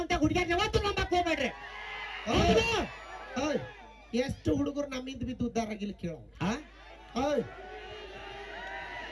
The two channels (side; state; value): both; identical; correlation 1.00